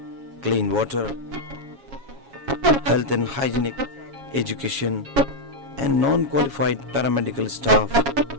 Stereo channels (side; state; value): left; late; 7.3 ms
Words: Clean water, health and hygienic education, and non-qualified paramedical staff